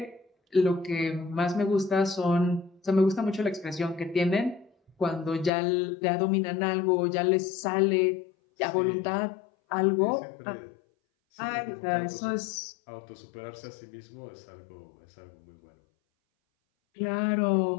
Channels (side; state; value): right; drops out; at 5.5 s